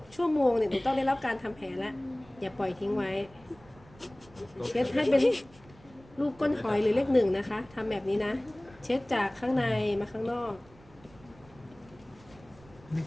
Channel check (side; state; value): right; noise; rumble, 25 dB below the sound